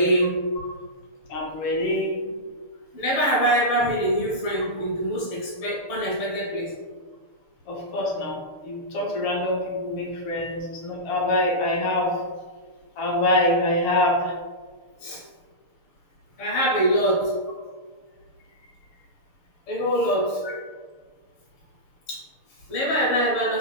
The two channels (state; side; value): late; right; 6.7 ms